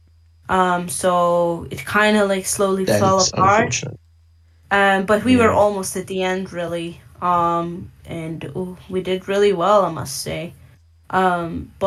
So it kind of like slowly That fell is apart. unfortunate. But we were yeah. almost at the end, really. And we did really well, I must say.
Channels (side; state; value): both; identical; correlation 1.00